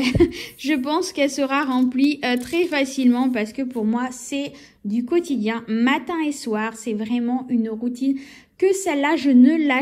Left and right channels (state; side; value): identical; both; correlation 1.00